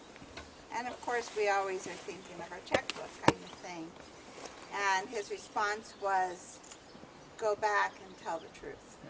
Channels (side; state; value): both; identical; correlation 1.00